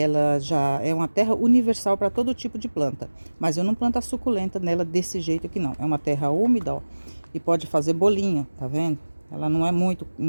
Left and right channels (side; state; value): both; inverted; correlation -1.00